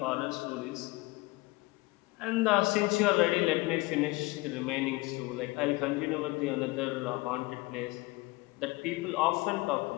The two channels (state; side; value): quieter; right; 22.8 dB